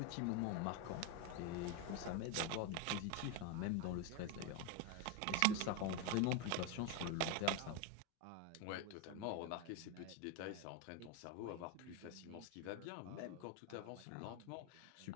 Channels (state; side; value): different; both; correlation 0.02